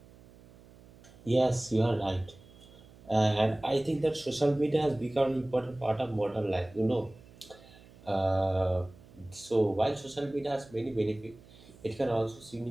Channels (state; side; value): noise; right; hum, 23 dB below the sound